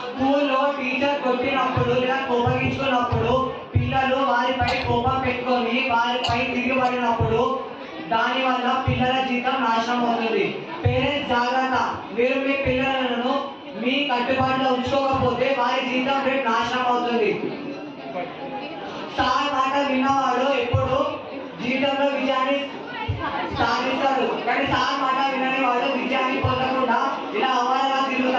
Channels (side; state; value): both; identical; correlation 1.00